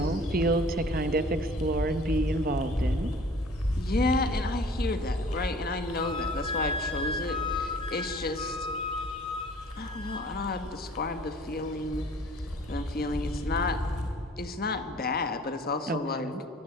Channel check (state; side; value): normal; both; correlation 0.50